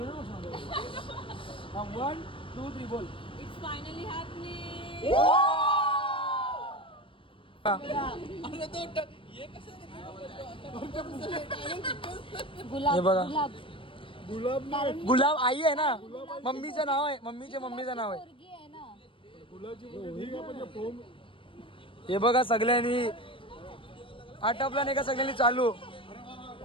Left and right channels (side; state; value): right; late; 0.25 ms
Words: ना 1 2 3 बोल. हे बघा गुलाब आई आहे ना, मम्मीचं नाव आहे, मम्मीचं नाव आहे. हे बघा सगळ्यांनी आटपला नाही का, सगळ्यांनी चालू.